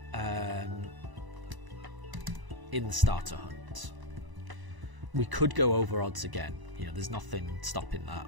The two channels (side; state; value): left; late; 1.0 ms